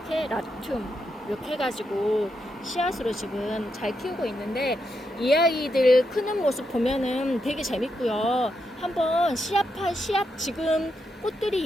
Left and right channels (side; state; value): both; normal; correlation 0.83